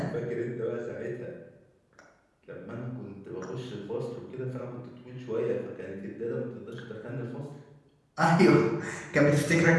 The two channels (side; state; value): both; identical; correlation 1.00